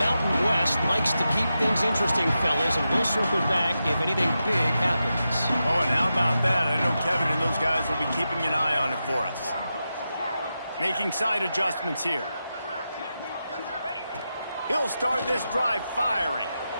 West likes to keep things interesting, fellas, and we'll circle back if anything big happens. Oh, and how about that? I know Kevin and those guys will be keeping an eye on it for us. Making side adjustments here. He'll start this drive firing.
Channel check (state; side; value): inverted; both; correlation -0.89